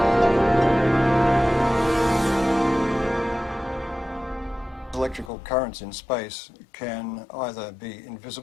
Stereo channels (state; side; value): drops out; right; at 5.3 s